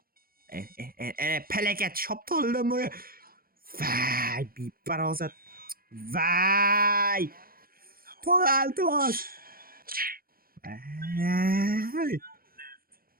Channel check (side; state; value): left; late; 0.43 ms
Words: Palakat shoptolidan bu. Vay, beparosat. Vay! To'g'ri. Vay!